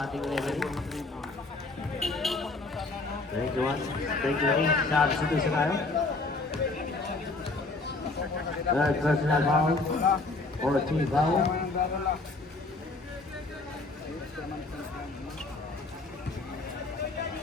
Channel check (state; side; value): quieter; right; 3.4 dB